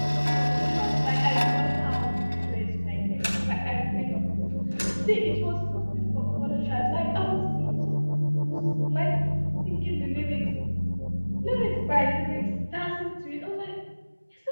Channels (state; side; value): inverted; both; correlation -1.00